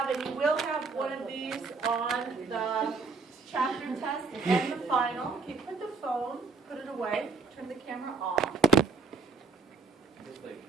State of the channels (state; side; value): quieter; left; 4.5 dB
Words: and you will have one of these on the chapter test and the final. Okay, put the phone, put it away, turn the camera off.